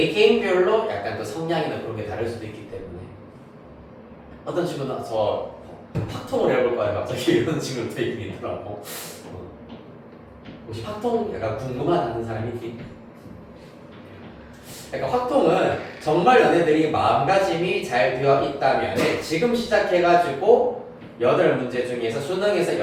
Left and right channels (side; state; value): both; identical; correlation 1.00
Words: 약간 그 성향이나 그런 게 다를 수도 있기 때문에 어떤 친구는 저 팍통을 해볼 거야 갑자기 이런 친구도 되게 있더라고. 혹시 팍통 약간 궁금하다는 사람이 있니? 그러니까 확통은 정말 너네들이 마음가짐이 잘 되어 있다면 지금 시작해가지고 8문제 중에서 수능에서